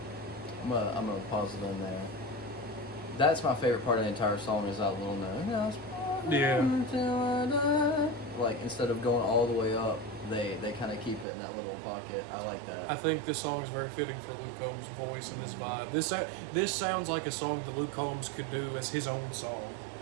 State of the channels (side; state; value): left; drops out; at 11.2 s